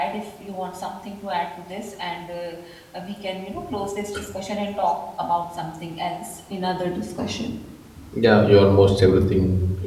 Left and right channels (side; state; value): both; identical; correlation 1.00